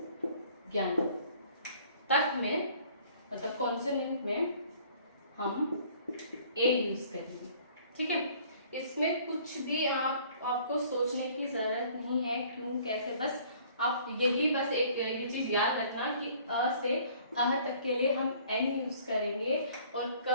ज्ञान तक में, मतलब कॉन्सोनेंट में हम ए यूज करेंगे, ठीक है। इसमें कुछ भी आपको सोचने की जरूरत नहीं है, क्यों कैसे, बस आप यही बस एक ये चीज याद रखना कि अ से अह तक के लिए हम एन यूज करेंगे और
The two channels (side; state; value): both; inverted; correlation -0.55